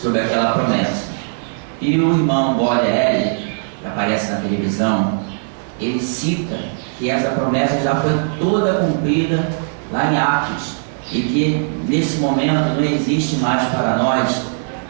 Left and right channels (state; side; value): silent; left; digital silence